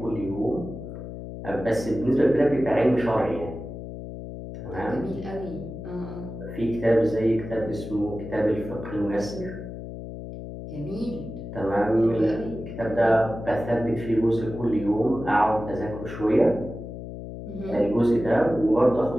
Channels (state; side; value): noise; left; hum, 10 dB below the sound